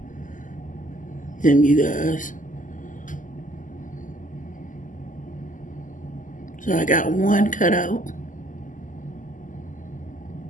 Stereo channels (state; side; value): late; right; 0.38 ms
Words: them, you guys. So I got one cut out.